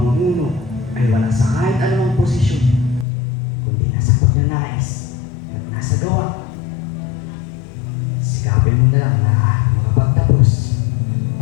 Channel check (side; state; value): right; drops out; at 3.1 s